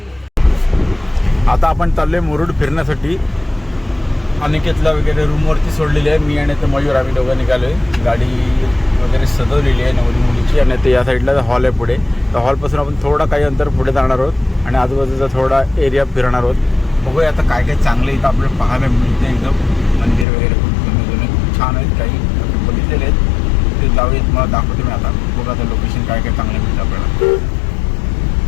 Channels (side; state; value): right; drops out; at 20.2 s